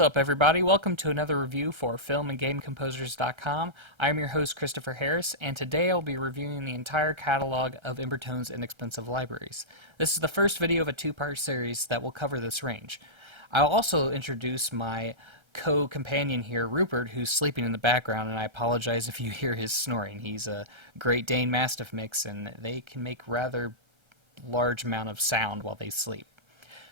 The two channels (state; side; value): late; left; 1.3 ms